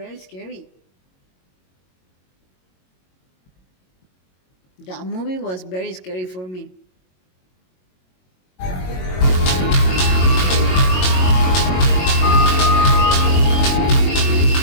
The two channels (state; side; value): late; right; 22 ms